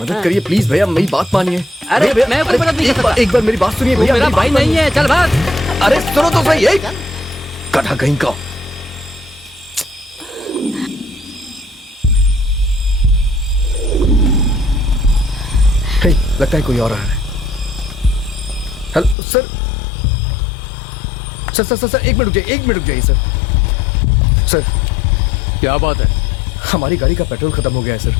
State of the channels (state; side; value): drops out; right; at 19.2 s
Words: करिए, प्लीज भैया, मेरी बात मानिए। अरे भैया, मैं कोई मदद नहीं कर सकता। एक बार मेरी बात सुनिए तू भैया। मेरा मेरी भाई बात नहीं है, चल भाग। मानिए। अरे सुनो तो सही, एक गधा कहीं का। हे, लगता है कोई और आ रहा है। हेलो सर, सर एक मिनट रुक जाइए सर। क्या बात है? हमारी गाड़ी का पेट्रोल खत्म हो गया है